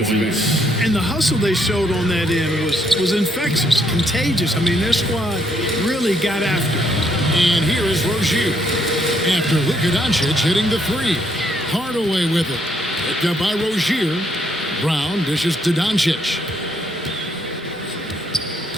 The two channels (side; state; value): both; normal; correlation 0.71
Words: end. And the hustle they showed on that end was infectious, contagious. I mean, their squad really got after it. And here is Rozier. After Luka Doncic hitting the 3. Hardaway with it. Picked up by Rozier. Brown dishes to Doncic.